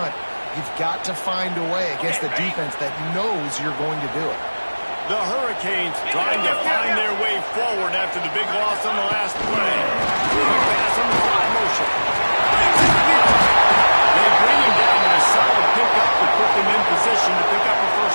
you've got to find a way against the defense that knows you're going to do it. The Hurricanes trying to find their way forward after the big loss on the last play. Pass on the fly motion. They bring him down with a solid pickup to put them in position to pick up a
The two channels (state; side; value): inverted; both; correlation -1.00